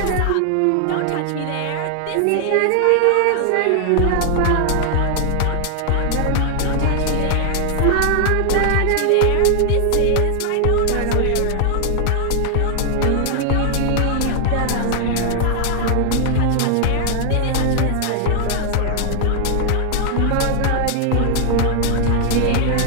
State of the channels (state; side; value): different; both; correlation 0.00